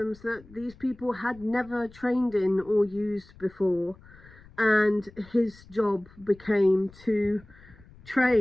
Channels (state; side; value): noise; left; rumble, 24 dB below the sound